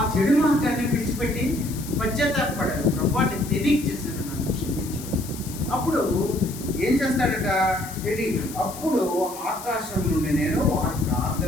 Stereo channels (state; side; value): noise; left; hiss, 14 dB below the sound